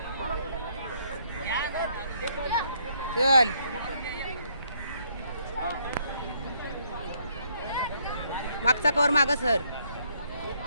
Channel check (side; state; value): both; inverted; correlation -0.70